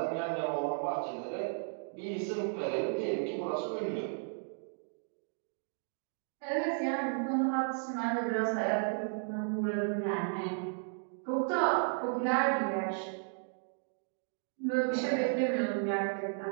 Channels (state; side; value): silent; left; 55 dB below the other